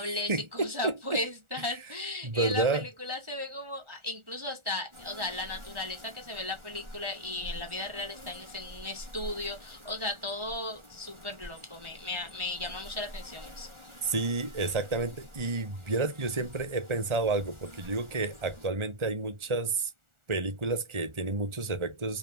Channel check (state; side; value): late; left; 1.4 ms